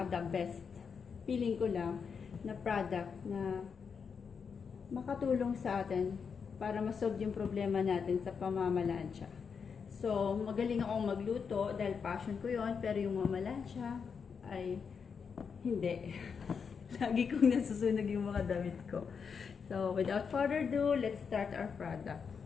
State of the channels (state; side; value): quieter; right; 6.1 dB